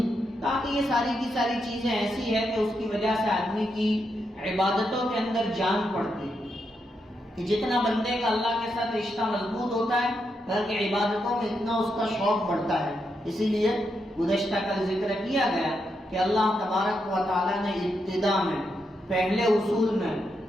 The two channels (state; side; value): normal; both; correlation 0.82